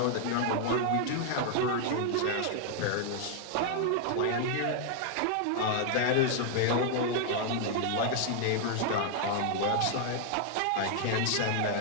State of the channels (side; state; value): both; different; correlation 0.00